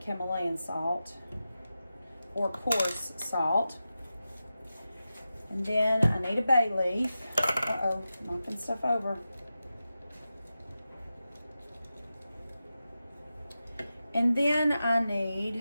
Himalayan salt or coarse salt. And then I need a bay leaf. Uh-oh, knocking stuff over. And then I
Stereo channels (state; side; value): inverted; both; correlation -0.92